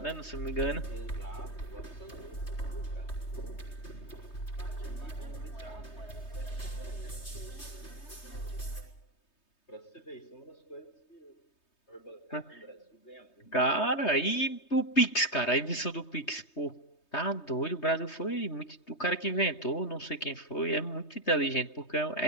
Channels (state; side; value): late; right; 3.2 ms